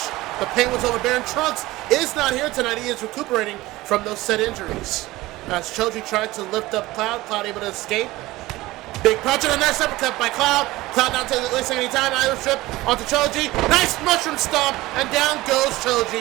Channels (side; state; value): left; quieter; 18.7 dB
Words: The pain was overbearing. Trunks is not here tonight. He is recuperating from those said injuries. As Choji tried to lift up Cloud, Cloud able to escape. Big punch and a nice uppercut by Cloud. Cloud not wasting any time. Irish strip onto Choji. Nice mushroom stomp, and down goes